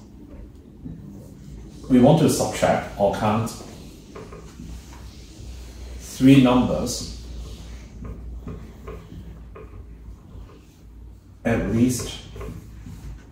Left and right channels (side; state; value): both; identical; correlation 1.00